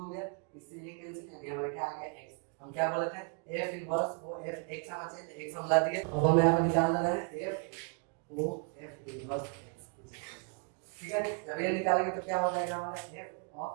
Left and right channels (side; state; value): left; quieter; 38.3 dB